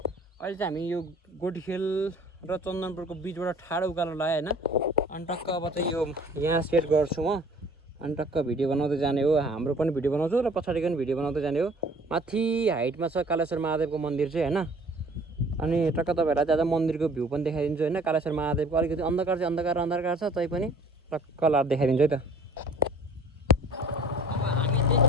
अहिले चाहिँ हामी यो गोटीखेल र चन्दनपुरको बिचबाट ठाडो उकालो लाग्यो हैन। अनि टक्क अब चाहिँ यो यहाँ सेट गर्छु म। अनि टक्क भिडियो बनाउँदै जाने हो। हाम्रो पनि भिडियो बनाउँछु र पछाडिको पनि भिडियो बनाउँदै जाने हो। माथि हाइटमा छ कालेश्वर महादेवको मन्दिर चाहिँ हैन। अनि टक्क तपाईहरुलाई चाहिँ आज मन्दिरको भ्यू पनि देखाइदिन्छु हैन। कालेश्वर महादेवको अलिकति अन्धकार छ तै पनि टक्क लाएर देखाइदिन्छु है त।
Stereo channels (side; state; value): both; normal; correlation 0.51